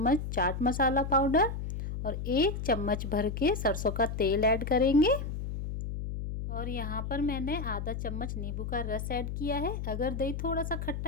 चाट मसाला पाउडर और 1 चम्मच भर के सरसों का तेल ऐड करेंगे। और यहाँ पर मैंने आधा चम्मच नींबू का रस ऐड किया है। अगर दही थोड़ा सा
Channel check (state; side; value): noise; left; hum, 5 dB below the sound